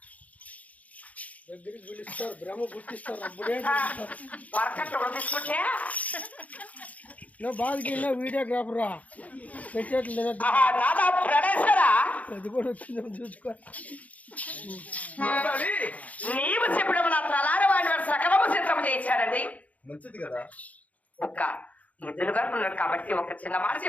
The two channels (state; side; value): late; right; 0.071 ms